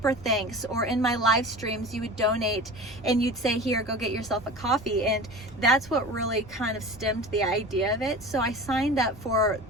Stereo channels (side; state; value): both; normal; correlation 0.35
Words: thanks, or in my live streams you would donate and you'd say, here, go get yourself a coffee. And that's what really kind of stemmed the idea of it. So I signed up for